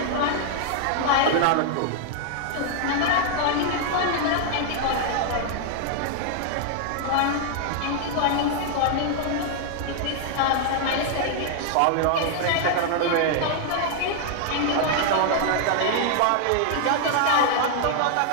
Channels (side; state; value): both; different; correlation 0.00